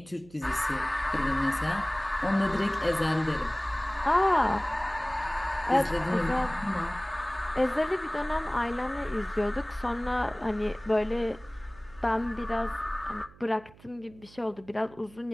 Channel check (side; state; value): right; noise; hum, 24 dB below the sound